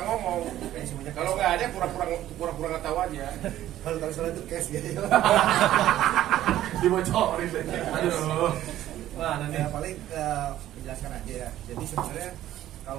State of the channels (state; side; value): quieter; left; 13.1 dB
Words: ngomong. Kalau nggak ada pura-pura nggak tahu aja. Kalau tahu salah itu cash ya. Dibocorin saja. Aduh. Wah, nanti Ya, paling menjelaskan aja ya. Jadi sebenarnya